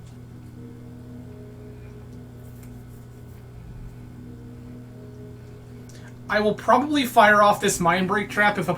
I will probably fire off this Mind Break Trap if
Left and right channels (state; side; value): identical; both; correlation 1.00